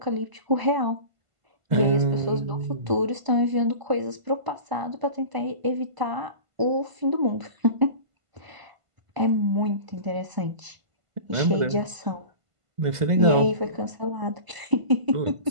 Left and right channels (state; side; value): late; left; 1.5 ms